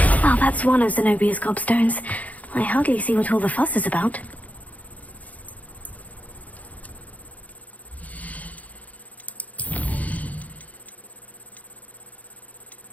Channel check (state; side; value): late; right; 0.073 ms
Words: Well, that's one of Zenobia's gobstones. I hardly see what all the fuss is about.